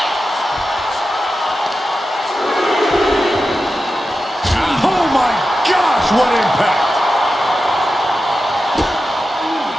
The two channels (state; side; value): normal; both; correlation 0.91